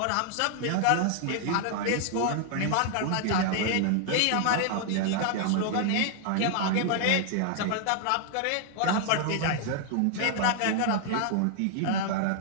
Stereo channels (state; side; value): different; both; correlation 0.00